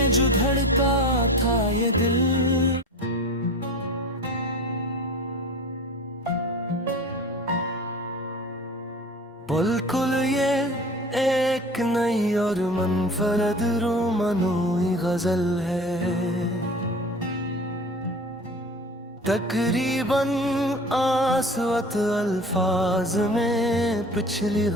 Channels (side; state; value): both; normal; correlation 0.38